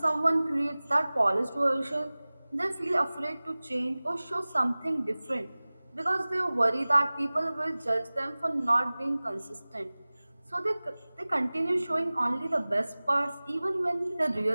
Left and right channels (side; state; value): both; inverted; correlation -0.99